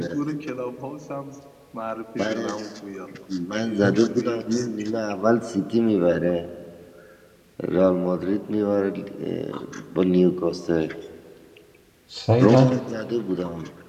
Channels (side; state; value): both; identical; correlation 1.00